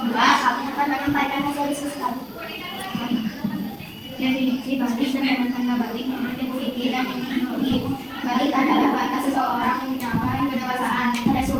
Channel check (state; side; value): identical; both; correlation 1.00